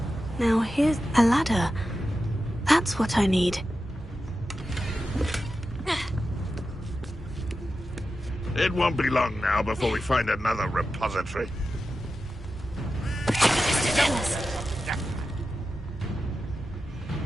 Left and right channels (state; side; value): normal; both; correlation 0.91